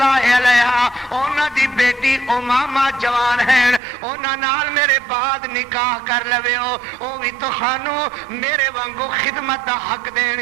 علیہا انہاں دی بیٹی امامہ جوان ہیں انہاں نال میرے بعد نکاح کر لویو او بھی تہانوں میرے وانگو خدمت دا حق دین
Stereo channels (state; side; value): drops out; left; at 3.8 s